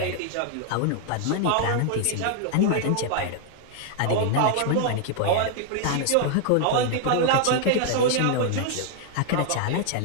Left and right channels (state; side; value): different; both; correlation 0.00